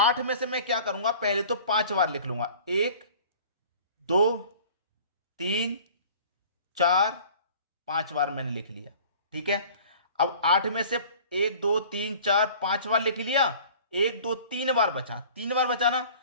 में से मैं क्या करूंगा, पहले तो 5 बार लिख लूंगा। 1 2 3 4 5 बार मैंने लिख लिया। ठीक है, अब 8 में से 1 2 3 4 5 बार लिख लिया, 1 2 3 बार बचा, 3 बार बचा ना,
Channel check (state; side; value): inverted; both; correlation -0.47